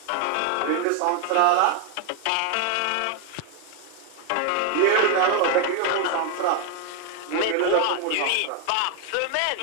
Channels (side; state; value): both; different; correlation 0.01